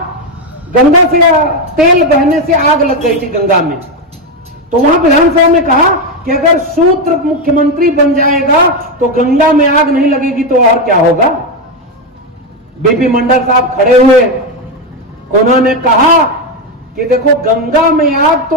गंगा से तेल बहने से आग लग गई थी गंगा में, तो वहां विधानसभा में कहा कि अगर शूद्र मुख्यमंत्री बन जाएगा तो गंगा में आग नहीं लगेगी तो और क्या होगा। बीपी मंडल साहब खड़े हुए, उन्होंने कहा कि देखो गंगा में आग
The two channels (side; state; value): both; normal; correlation 0.09